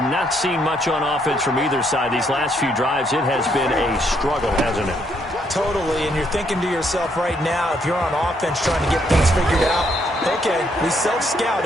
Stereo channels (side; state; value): both; normal; correlation 0.72